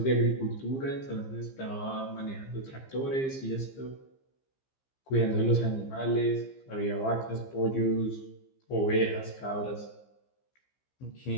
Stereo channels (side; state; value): right; late; 15 ms